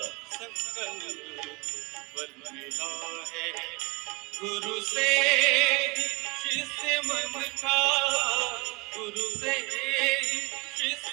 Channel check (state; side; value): quieter; left; 27.2 dB